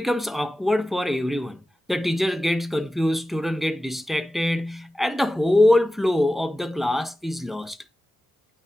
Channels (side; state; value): both; normal; correlation 0.95